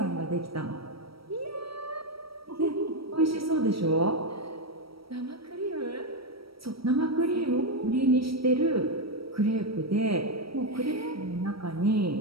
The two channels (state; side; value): late; left; 0.75 ms